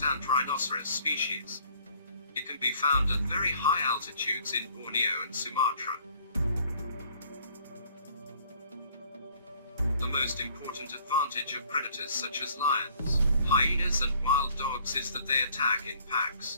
rhinoceros species. It can be found at very high altitudes in Borneo and Sumatra. The most important advantage of predators such as lions, hyenas and wild dogs is that they attack in packs.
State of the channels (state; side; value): inverted; both; correlation -0.58